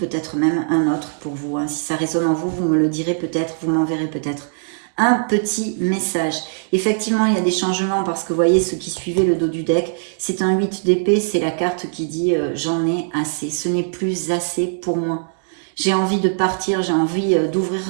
même un autre pour vous. Hein. Si ça résonne en vous, vous me le direz peut-être, vous m'enverrez peut-être un petit message. Effectivement, il y a des changements parce que vous voyez, ceux qui suivaient le dos du deck, c'est un 8 d'épée, c'est la carte qui dit j'en ai assez, ce n'est plus assez pour moi. J'ai envie de partir, j'ai envie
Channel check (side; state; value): left; silent; digital silence